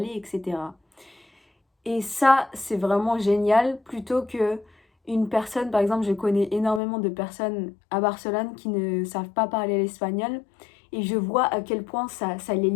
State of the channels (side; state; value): right; drops out; at 6.8 s